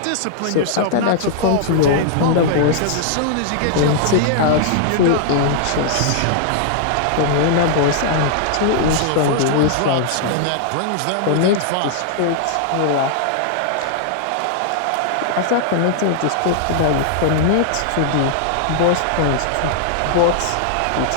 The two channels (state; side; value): different; both; correlation -0.01